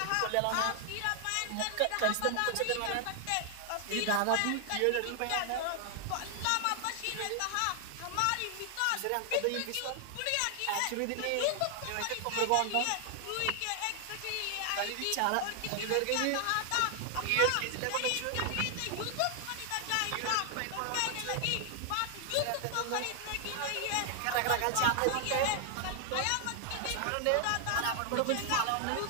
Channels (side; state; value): both; different; correlation 0.00